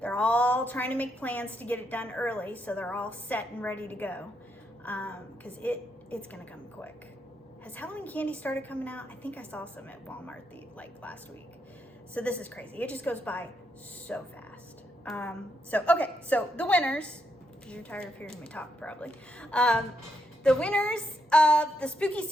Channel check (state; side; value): normal; both; correlation 0.80